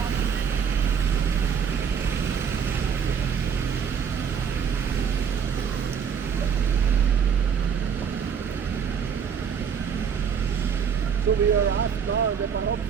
asked now in the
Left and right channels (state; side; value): quieter; left; 7.1 dB